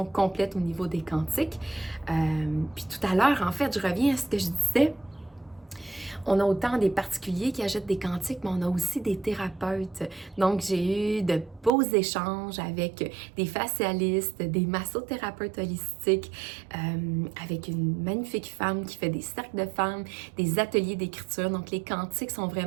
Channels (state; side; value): drops out; left; at 11.7 s